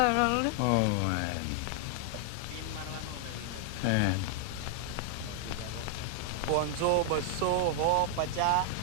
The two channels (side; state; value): both; different; correlation 0.00